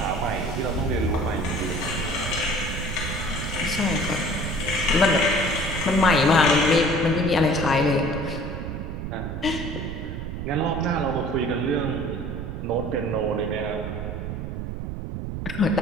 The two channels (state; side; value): noise; right; rumble, 5 dB below the sound